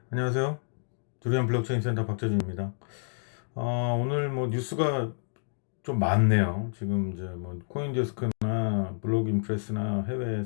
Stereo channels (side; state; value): right; silent; digital silence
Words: 안녕하세요. 두리안 블록체인 센터 박재준입니다. 오늘 뭐 뉴스가 좀 많네요. 지금 이제 뭐 코인데스크나 블록인프레스나 해외